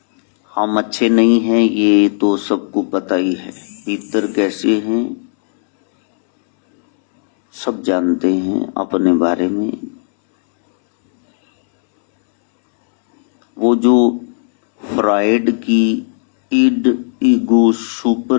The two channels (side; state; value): right; silent; 70 dB below the other